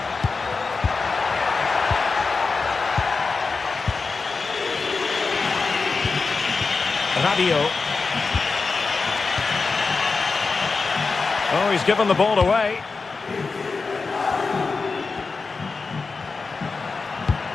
Rabiot. Oh, he's given the ball away.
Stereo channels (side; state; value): right; quieter; 4.4 dB